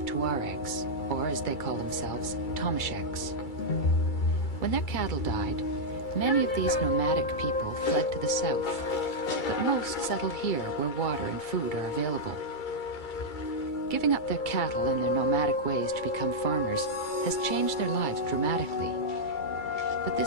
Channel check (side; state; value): right; late; 2.3 ms